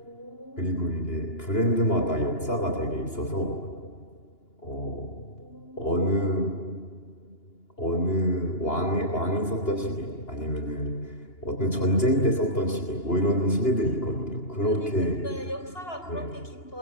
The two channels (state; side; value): late; right; 2.9 ms